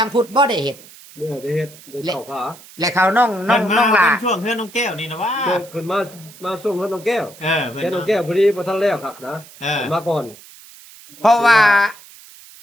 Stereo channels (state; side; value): noise; right; hiss, 21 dB below the sound